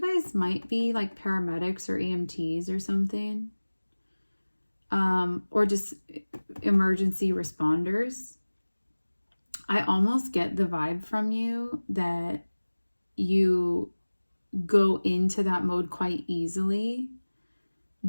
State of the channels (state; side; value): inverted; both; correlation -1.00